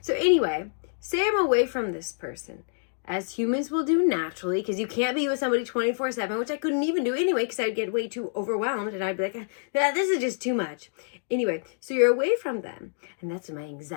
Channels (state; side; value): silent; right; digital silence